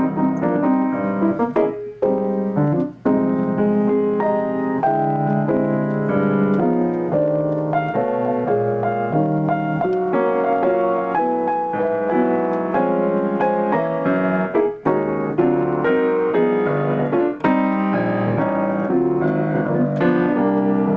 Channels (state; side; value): identical; both; correlation 1.00